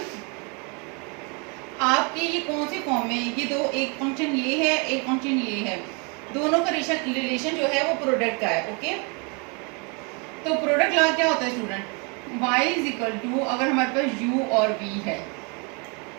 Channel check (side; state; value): left; quieter; 33.1 dB